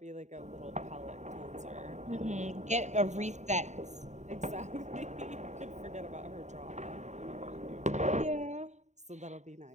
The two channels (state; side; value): late; left; 0.34 ms